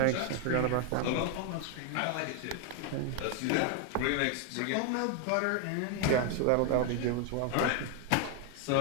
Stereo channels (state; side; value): different; both; correlation 0.01